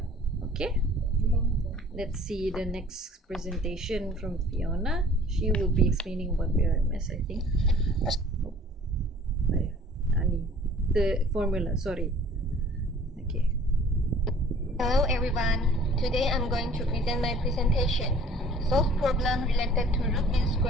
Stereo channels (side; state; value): both; normal; correlation 0.51